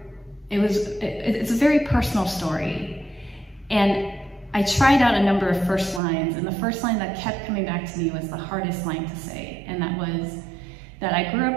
it's a very personal story. And I tried out a number of first lines, and the first line that kept coming back to me was the hardest line to say, and that was that I grew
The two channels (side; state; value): left; drops out; at 6.0 s